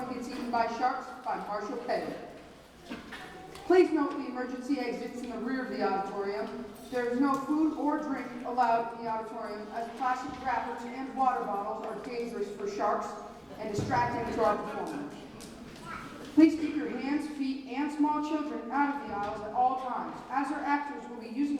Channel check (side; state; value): both; identical; correlation 1.00